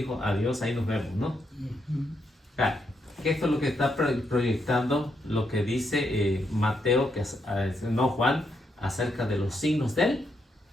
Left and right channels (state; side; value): normal; both; correlation 0.79